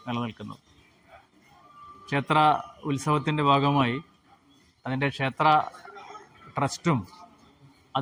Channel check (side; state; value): both; identical; correlation 1.00